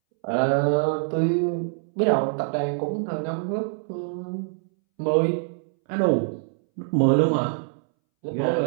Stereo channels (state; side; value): silent; left; 62 dB below the other